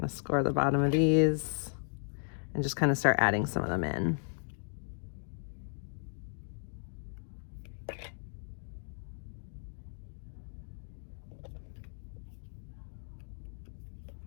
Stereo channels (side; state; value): right; silent; digital silence